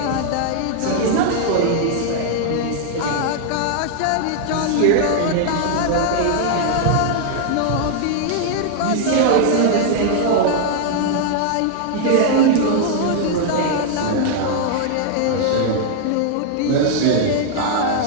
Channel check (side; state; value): both; different; correlation -0.01